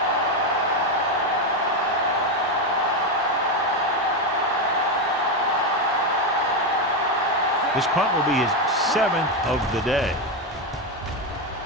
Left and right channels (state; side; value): normal; both; correlation 0.09